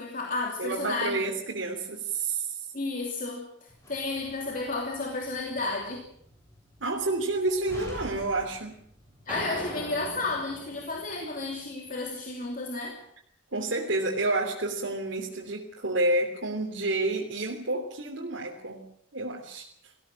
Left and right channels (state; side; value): normal; both; correlation -0.11